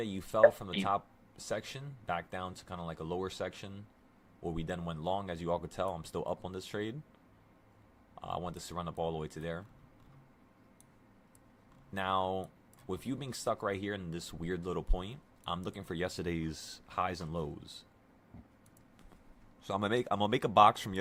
you fell from the top section back down to kind of like a lower section where we then went long. As you all could tell, I'm still up on this trade. I want this to run up all the way to there. Now, with you being stuck right here in this weird little point, I'm looking for yesterday's highs and lows. So I'm gonna make a box from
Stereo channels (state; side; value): identical; both; correlation 1.00